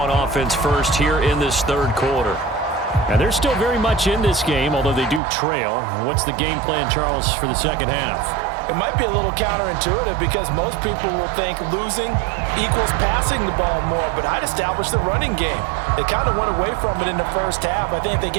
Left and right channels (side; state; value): left; drops out; at 5.2 s